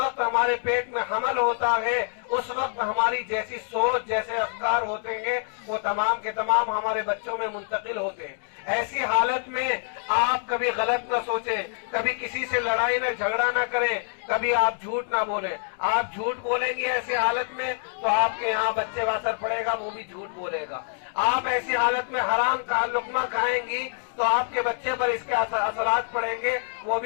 ہمارے پیٹ میں حمل ہوتا ہے، اس وقت ہماری جیسی سوچ، جیسے افکار ہوتے ہیں، وہ تمام کے تمام ہمارے بچوں میں منتقل ہوتے ہیں۔ ایسی حالت میں آپ کبھی غلط نہ سوچیں، کبھی کسی سے لڑائی نہ جھگڑا نہ کریں، کبھی آپ جھوٹ نہ بولیں۔ آپ جھوٹ بولیں گے ایسی حالت میں تو آپ کے یہاں بچے پر اثر پڑے گا، وہ بھی جھوٹ بولے گا۔ آپ ایسی حالت میں حرام کا لقمہ کھائیں گی تو آپ کے بچے پر اس کے اثرات پڑیں گے، وہ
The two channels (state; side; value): silent; right; digital silence